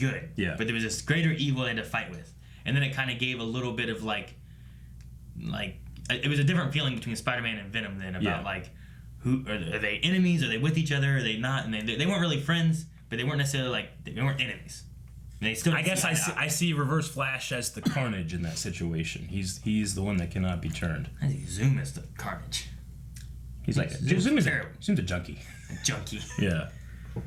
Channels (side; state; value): both; identical; correlation 1.00